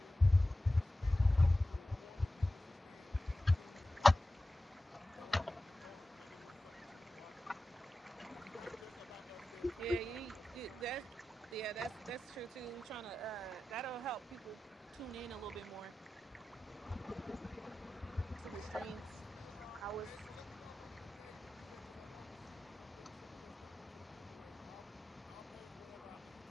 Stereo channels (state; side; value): normal; both; correlation 0.95